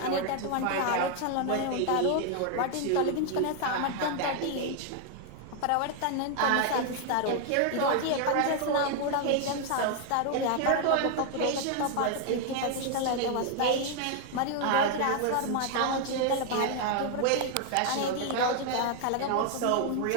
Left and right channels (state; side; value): different; both; correlation 0.00